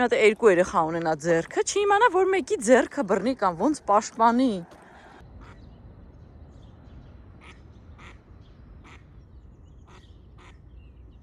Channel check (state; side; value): identical; both; correlation 1.00